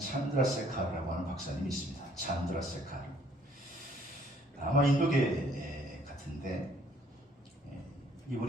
하는 박사님이 있습니다. 찬드라세카르. 아마 인도계 같은데,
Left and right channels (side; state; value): both; normal; correlation 0.62